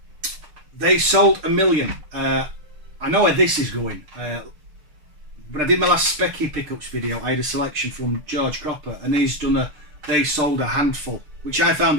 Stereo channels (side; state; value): left; late; 6.7 ms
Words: They sold 1 million. I know where this is going. When I did my last Specky pickups video, I had a selection from George Cropper, and he's done they sold a handful, which I